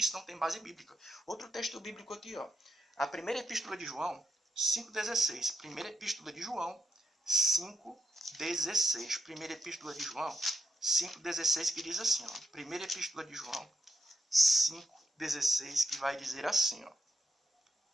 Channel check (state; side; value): normal; both; correlation 0.84